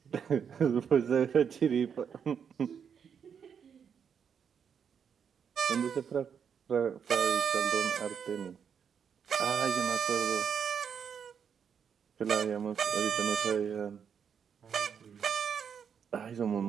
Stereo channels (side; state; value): left; quieter; 7.3 dB